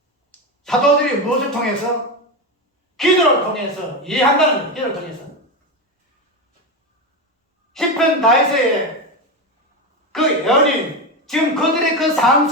사도들이 무엇을 통해서? 기도를 통해서 이해한다는 거예요. 기도를 통해서. 10편 다윗의 그 예언이 지금 그들의 그 삶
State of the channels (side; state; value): both; normal; correlation 0.15